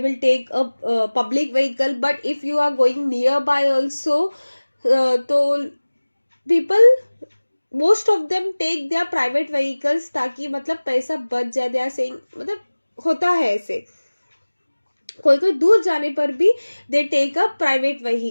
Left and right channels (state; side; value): inverted; both; correlation -1.00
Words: take a public vehicle, but if you are going nearby also तो people most of them take their private vehicles, ताकि मतलब पैसा बच जाए. दे आर सेइंग मतलब होता है ऐसे, कोई कोई दूर जाने पर भी they take a private